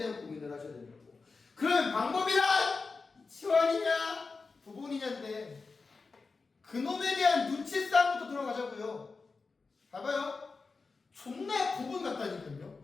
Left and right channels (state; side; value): quieter; right; 4.3 dB